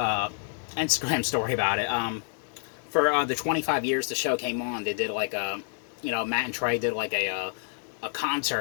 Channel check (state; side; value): silent; right; 59 dB below the other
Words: Instagram story about it. For the 25 years the show came on, they did like a, Matt and Trey did like a